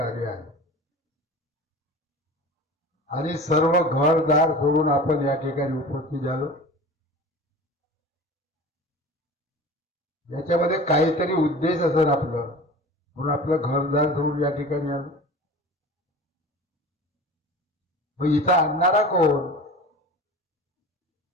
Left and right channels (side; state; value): both; normal; correlation 0.37